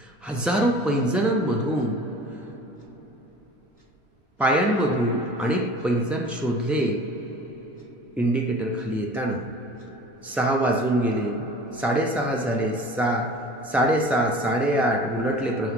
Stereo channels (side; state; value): both; normal; correlation 0.43